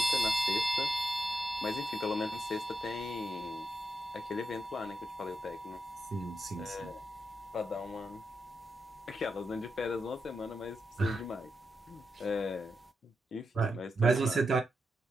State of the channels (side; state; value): both; normal; correlation 0.85